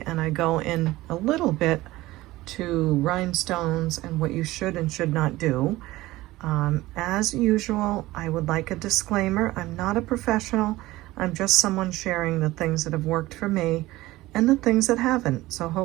and I go in a little bit to rhinestones and what you should and should not do. As usual, I would like a disclaimer. I'm not a professional. I'm just someone sharing the things that have worked for me and the things that haven't. So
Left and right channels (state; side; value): quieter; left; 18.0 dB